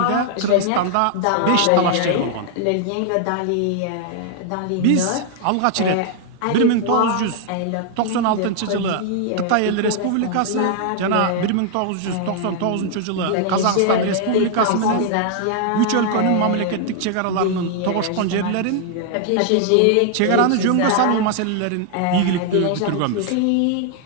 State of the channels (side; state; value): both; different; correlation 0.00